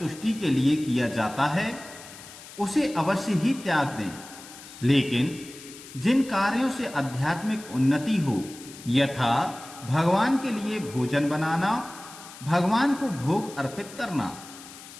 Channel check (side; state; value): left; noise; hiss, 17 dB below the sound